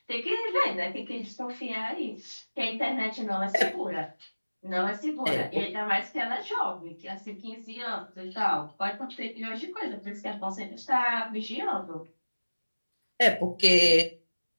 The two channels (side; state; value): both; inverted; correlation -1.00